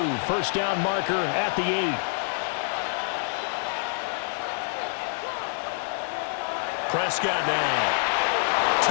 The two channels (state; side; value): silent; right; digital silence